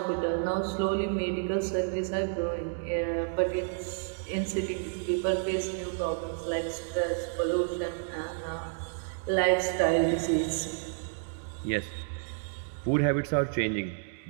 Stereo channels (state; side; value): silent; left; digital silence